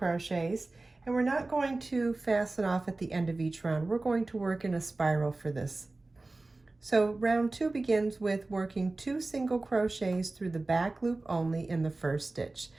and we're not going to fasten off at the end of each round. We're going to work in a spiral for this. So round 2 begins with working 2 single crochets through the back loop only in the first stitch.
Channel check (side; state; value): left; quieter; 3.2 dB